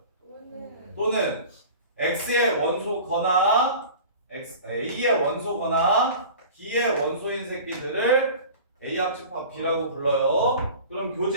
또는 X의 원소거나 A의 원소거나 B의 원소인 새끼들을 A 합집합 B라고 불러요. 그럼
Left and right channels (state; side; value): inverted; both; correlation -0.39